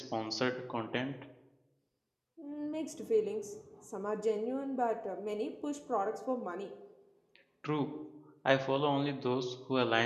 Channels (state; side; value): identical; both; correlation 1.00